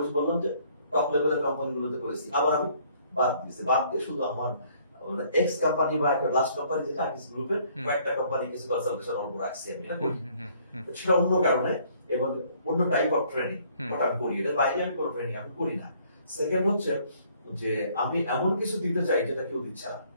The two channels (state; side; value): inverted; both; correlation -0.62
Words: বললাম যে টপ লেভেলের কোম্পানিগুলোতে করেছি, আবার আমি বাদ দিয়ে শুধু আমার এক্স কোম্পানি বা একটা লাস্ট কোম্পানি যেটা আকিস গ্রুপের কয়েকটা কোম্পানি কিছু কনসালটেশন অল্প রাখছি আমি, সেটা অন্য কারণে এবং অন্য টাইপ অফ ট্রেনিং ওটা আমি করি। এর বাইরে আমি কোনো ট্রেনিং আমি করি না। সেকেন্ড হচ্ছে যে আমি এমন কিছু দিতে চাই যেটা কেউ দিচ্ছে না,